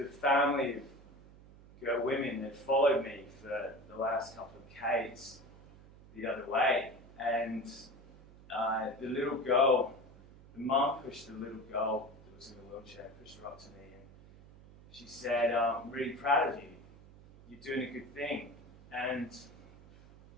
family of women that followed me for the last couple of k's the other way. And the little girl, the mum pushed the little girl that was in the wheelchair, pushed her up to me, and she said, I'm really proud of you. You're doing a good thing. And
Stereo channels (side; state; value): right; noise; hum, 21 dB below the sound